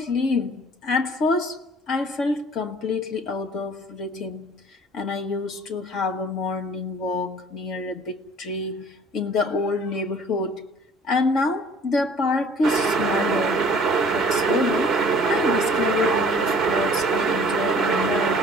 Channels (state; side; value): normal; both; correlation 0.51